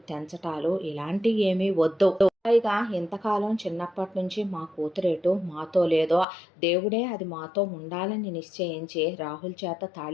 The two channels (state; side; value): drops out; right; at 6.2 s